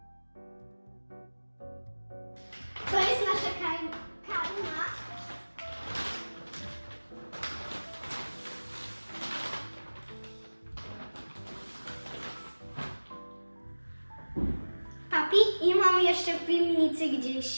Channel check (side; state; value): both; inverted; correlation -1.00